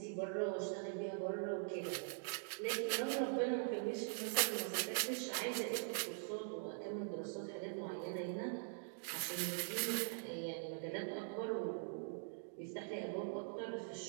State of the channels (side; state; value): left; silent; digital silence